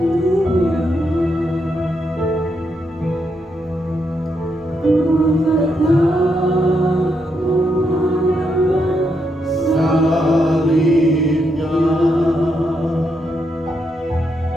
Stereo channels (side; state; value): both; normal; correlation 0.80